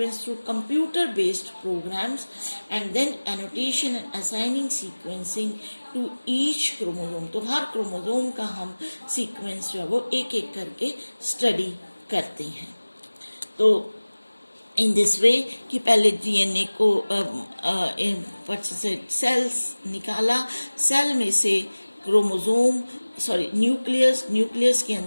through computer-based programs, and then annotation and assigning sequencing to each chromosome. तो हर chromosome का हम sequence जो है वो एक एक करके study करते हैं। तो इन दिस वे कि पहले डीएनए को सेल्स निकाला, सेल में से क्रोमोसोम न्यूक्लियस के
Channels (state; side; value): inverted; both; correlation -1.00